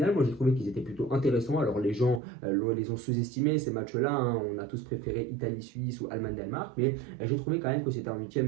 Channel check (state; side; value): drops out; left; at 2.2 s